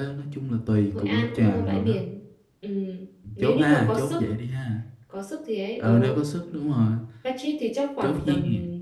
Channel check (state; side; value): identical; both; correlation 1.00